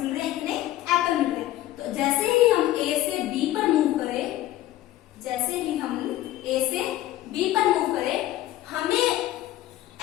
रहे हैं, इतने एप्पल मिल रहे हैं। तो जैसे ही हम ए से बी पर मूव करें, जैसे ही हम ए से बी पर मूव करें, हमें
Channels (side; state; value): right; quieter; 14.7 dB